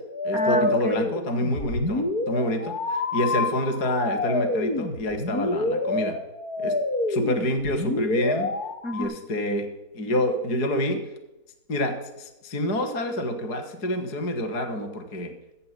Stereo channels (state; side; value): late; right; 4.7 ms